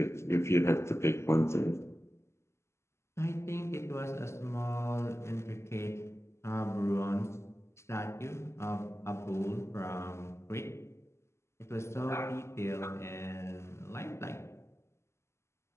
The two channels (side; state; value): right; late; 0.13 ms